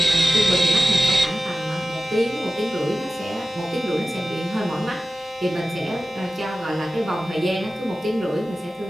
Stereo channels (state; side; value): normal; both; correlation 0.96